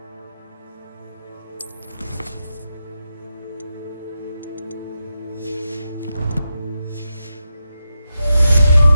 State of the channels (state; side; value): inverted; both; correlation -0.87